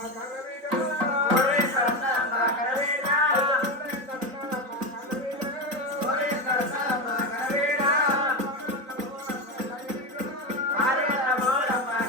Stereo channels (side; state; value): left; late; 3.9 ms